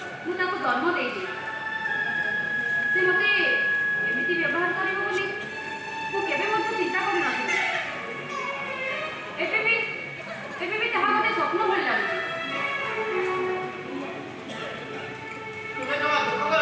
जन्म दे से मते एमिति व्यवहार करिवो बोली मु केबे मते चिंता करि नथि एबे भी ताहा मते स्वप्न भल लागै तुम्हें जमा दुख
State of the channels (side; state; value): both; identical; correlation 1.00